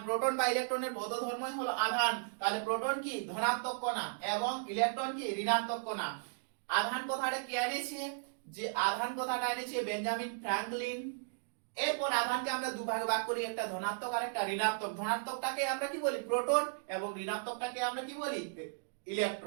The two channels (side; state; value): left; silent; digital silence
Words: প্রোটন বা ইলেকট্রনের ভৌত ধর্মই হলো আধান। তাহলে প্রোটন কি ধনাত্মক কণা এবং ইলেকট্রন কি ঋণাত্মক কণা। আধান কথাটা কে এনেছে? যে আধান কথাটা এনেছে বেঞ্জামিন ফ্র্যাঙ্কলিন। এরপর আধানকে আমরা দুভাগে ভাগ করি, একটা ধনাত্মক আর একটা ঋণাত্মক। ধনাত্মকটাকে আমরা কি বলি প্রোটন এবং ঋণাত্মকটাকে আমরা কি বলি